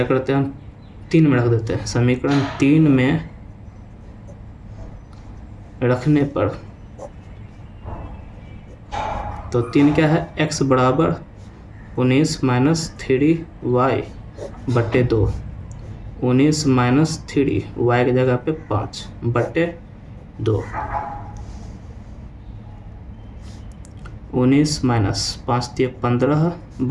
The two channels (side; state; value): both; identical; correlation 1.00